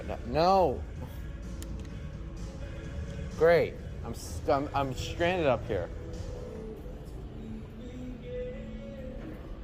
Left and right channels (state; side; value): identical; both; correlation 1.00